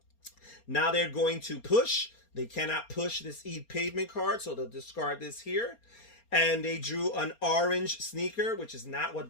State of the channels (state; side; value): late; right; 4.3 ms